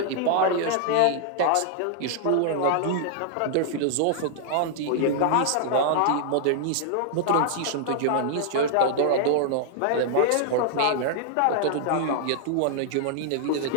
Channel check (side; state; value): both; different; correlation -0.01